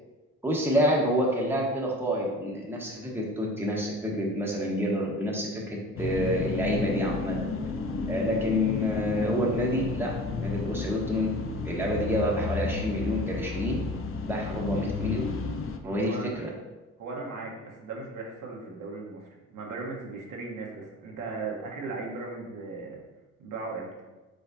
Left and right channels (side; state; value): both; normal; correlation 0.41